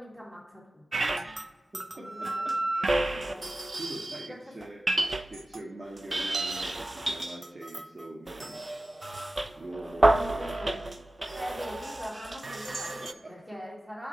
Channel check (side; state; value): both; normal; correlation 0.96